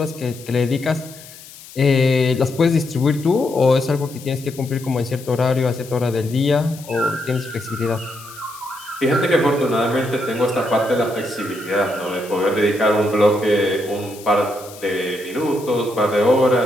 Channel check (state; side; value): noise; left; hiss, 18 dB below the sound